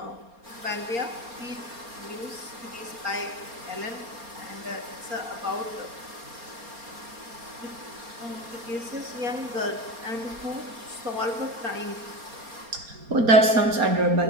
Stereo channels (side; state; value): left; late; 4.3 ms